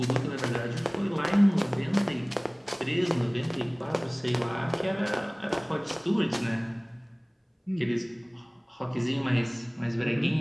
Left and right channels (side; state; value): both; identical; correlation 1.00